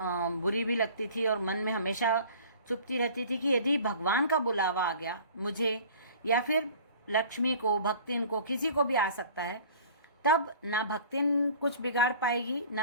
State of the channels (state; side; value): inverted; both; correlation -0.46